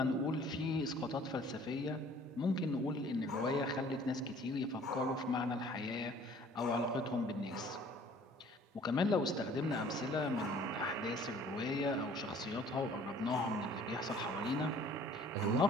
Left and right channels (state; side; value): normal; both; correlation 0.53